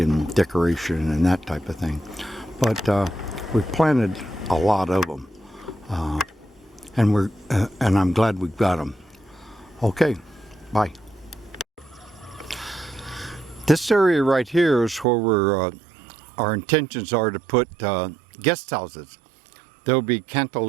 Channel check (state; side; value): drops out; left; at 15.1 s